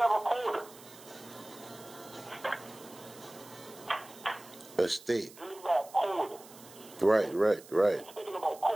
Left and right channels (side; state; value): right; noise; hiss, 20 dB below the sound